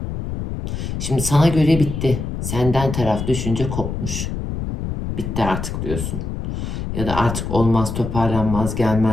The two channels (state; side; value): noise; left; rumble, 5 dB below the sound